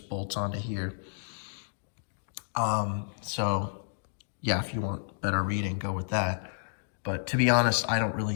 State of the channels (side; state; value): right; silent; digital silence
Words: bolts onto here. So yeah, if you want better reading, go with that. But to be honest, I don't